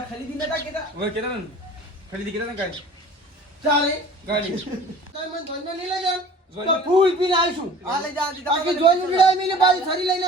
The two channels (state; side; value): normal; both; correlation 0.45